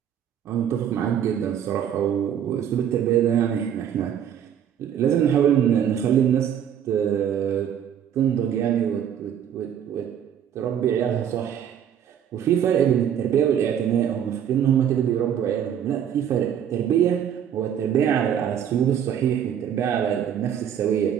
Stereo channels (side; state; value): left; quieter; 9.2 dB